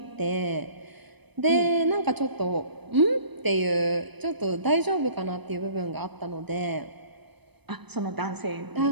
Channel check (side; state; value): left; late; 0.99 ms